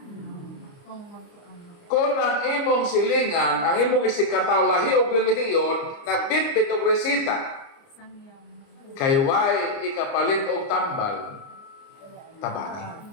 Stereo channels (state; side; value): late; right; 29 ms